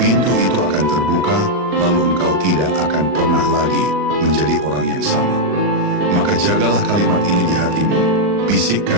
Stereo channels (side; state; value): left; late; 39 ms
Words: pintu itu akan terbuka, lalu engkau tidak akan pernah lagi menjadi orang yang sama. Maka jagalah kalimat ini di hatimu,